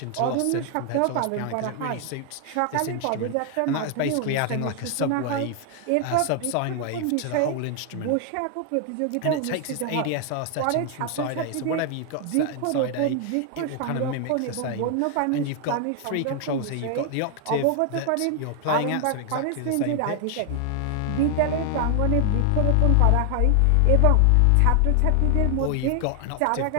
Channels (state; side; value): different; both; correlation 0.00